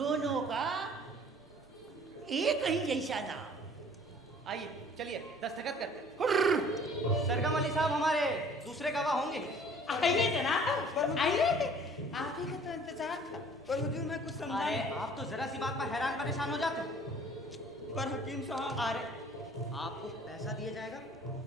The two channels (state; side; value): normal; both; correlation 0.52